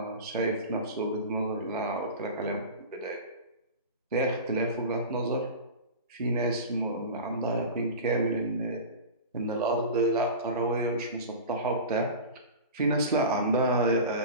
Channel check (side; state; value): both; inverted; correlation -0.31